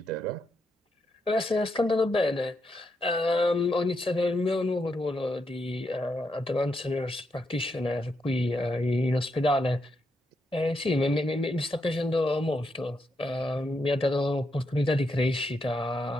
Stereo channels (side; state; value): both; normal; correlation 0.82